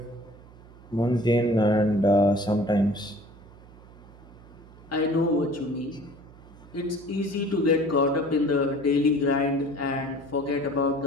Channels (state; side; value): noise; right; hum, 21 dB below the sound